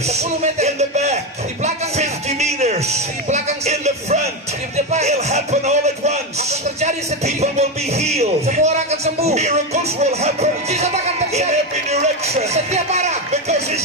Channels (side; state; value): both; normal; correlation 0.12